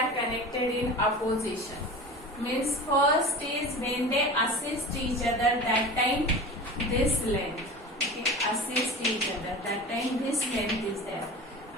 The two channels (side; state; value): both; normal; correlation 0.33